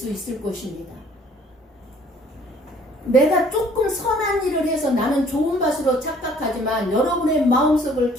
있을 것입니다. 내가 조금 선한 일을 해서 나는 좋은 밭으로 착각하지만 여러분의 마음속을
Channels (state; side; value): normal; both; correlation 0.57